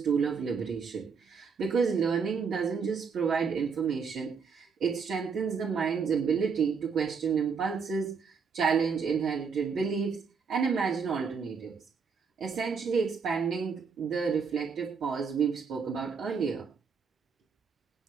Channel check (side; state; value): left; quieter; 5.7 dB